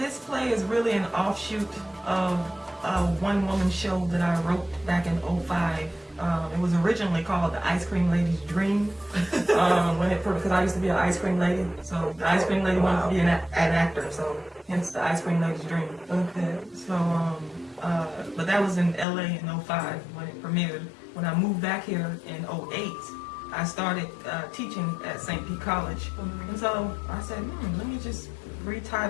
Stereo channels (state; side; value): drops out; right; at 19.1 s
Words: play is really an offshoot of a one-woman show that I wrote back in 05. It was originally called The Ice Cream Lady's Dream, because I used to be an ice cream lady. So the ice cream lady wanted to be an actor, so hence The Ice Cream Lady's Dream. Okay. So, but that was in LA in 05 when it premiered. When I moved back here in 08, I started teaching at St. Pete College. And so I said, let me just